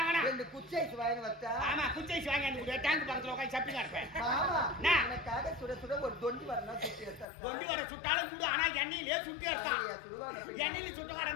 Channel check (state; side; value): drops out; right; at 7.2 s